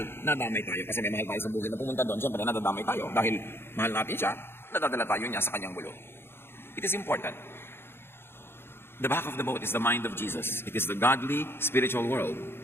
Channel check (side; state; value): right; late; 0.11 ms